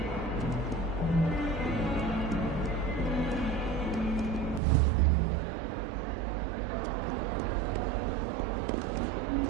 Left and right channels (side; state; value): left; drops out; at 4.6 s